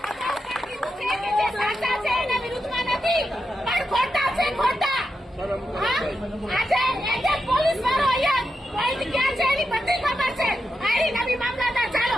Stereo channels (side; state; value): both; normal; correlation 0.87